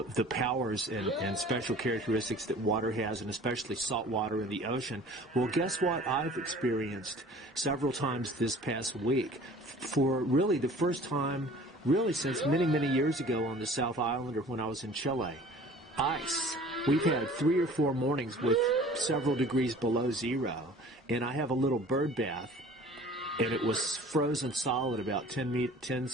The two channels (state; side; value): normal; both; correlation 0.47